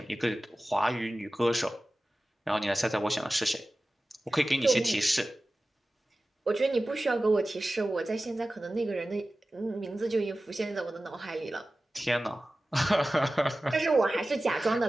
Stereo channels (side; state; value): both; normal; correlation 0.96